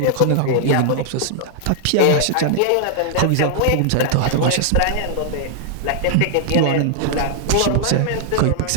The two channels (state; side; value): different; both; correlation -0.01